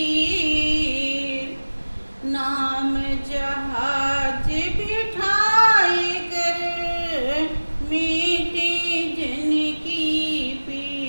नाम जहाज बिठाए कर मीटे जन की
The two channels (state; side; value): inverted; both; correlation -1.00